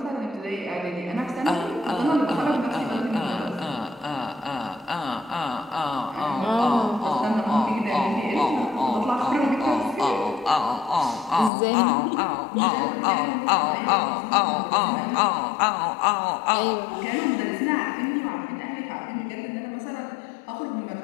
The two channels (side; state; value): right; drops out; at 11.5 s